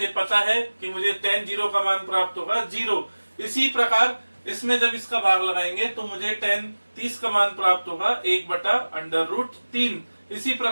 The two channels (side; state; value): both; inverted; correlation -1.00